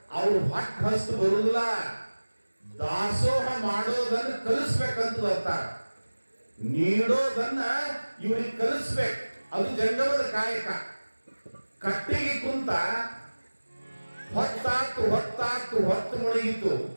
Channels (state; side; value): inverted; both; correlation -1.00